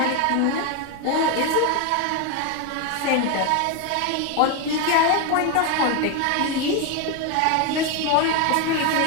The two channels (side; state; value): both; different; correlation 0.02